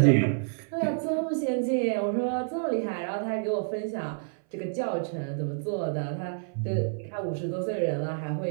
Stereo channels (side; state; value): left; silent; 59 dB below the other